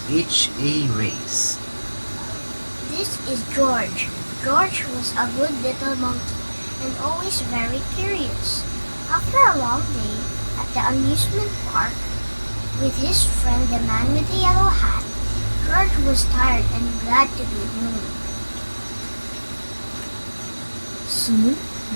H.A. Race. This is George. George was a good little monkey and always very curious. After a long day at the amusement park with his friend the man with the yellow hat, George was tired and glad to be home. Soon,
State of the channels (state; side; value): inverted; both; correlation -1.00